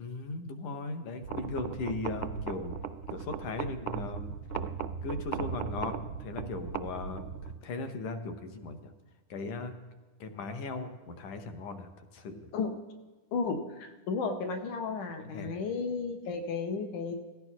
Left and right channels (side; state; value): right; late; 10 ms